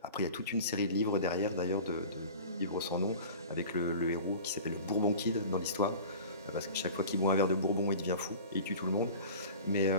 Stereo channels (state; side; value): inverted; both; correlation -0.38